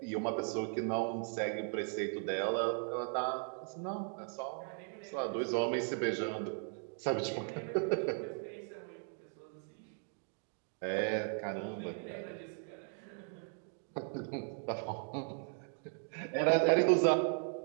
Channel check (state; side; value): silent; left; 53 dB below the other